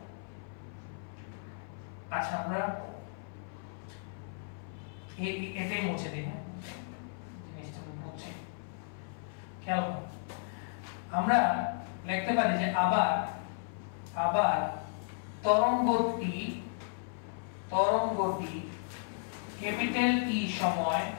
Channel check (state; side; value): silent; right; 55 dB below the other